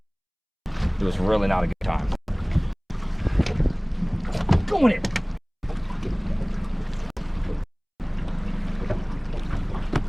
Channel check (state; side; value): identical; both; correlation 1.00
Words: It was really not a good time. Going in.